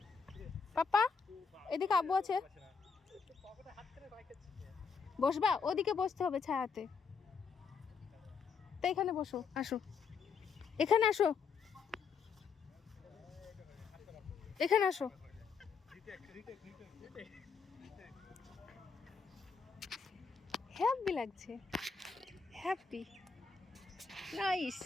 পাপা এদিকে আব্বু আছে, বসবা? ওদিকে বসতে হবে ছায়াতে, তো এখানে বসো, আসো, এখানে আসো, এখানে আসো। হ্যাপি লাগছে, হ্যাপি, নাইস।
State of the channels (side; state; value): right; quieter; 5.6 dB